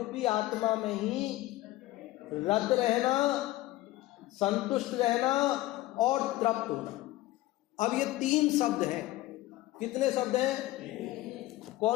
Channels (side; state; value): right; quieter; 17.2 dB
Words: आत्मा में ही रत रहना, संतुष्ट रहना और तृप्त होना। अब ये 3 शब्द हैं। कितने शब्द हैं?